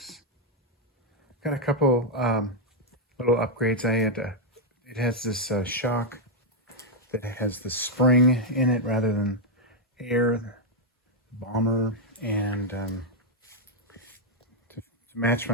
Got a couple little upgrades. It has this shock that has the spring in it rather than air, bomber, and to match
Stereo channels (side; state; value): both; normal; correlation -0.01